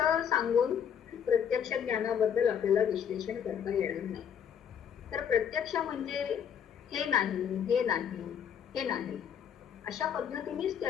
सांगून प्रत्यक्ष ज्ञानाबद्दल आपल्याला विश्लेषण करता येणार नाही. तर प्रत्यक्ष म्हणजे हे नाही, हे नाही, हे नाही, अशा पद्धतीनेच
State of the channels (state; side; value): quieter; right; 8.3 dB